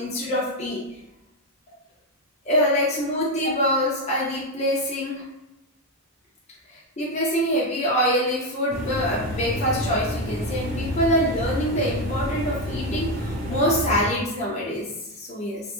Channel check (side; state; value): both; normal; correlation 0.09